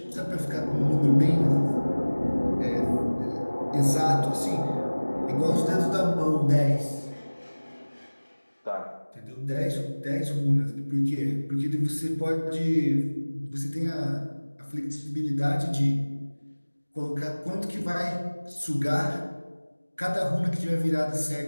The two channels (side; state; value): both; inverted; correlation -1.00